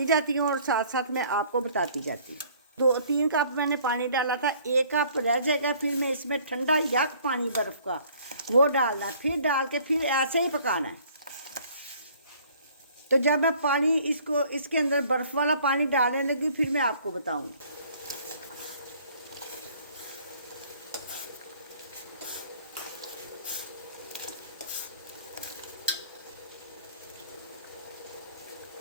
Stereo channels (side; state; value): both; inverted; correlation -0.56